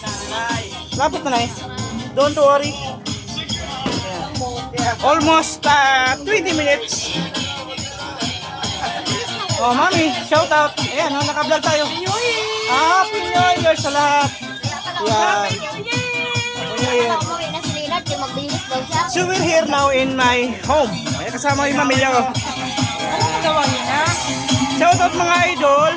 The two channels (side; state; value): both; identical; correlation 1.00